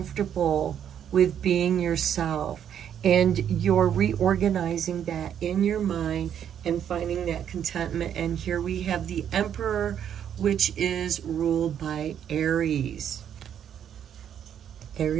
with being yourself, and you're reorganizing that in your mind and finding that contentment. And here we have the Emperor, which is ruled by Aries.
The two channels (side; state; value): left; quieter; 9.2 dB